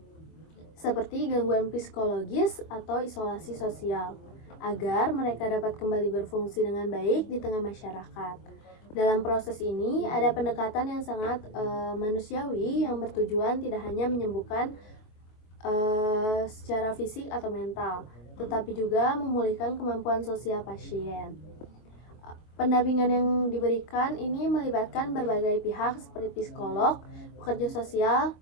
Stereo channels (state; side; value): late; right; 23 ms